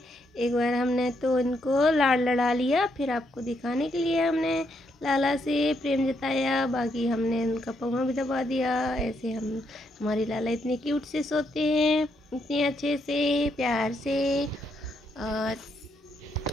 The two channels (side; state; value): both; normal; correlation 0.77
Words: बार हमने तो उनको लाड़ लड़ा लिया, फिर आपको दिखाने के लिए हमने लाला से प्रेम जताया। बाकी हमने उनका पौवा भी दबा दिया। ऐसे हमारे लाला इतने क्यूट से सोते हैं, इतने अच्छे से प्यार से। और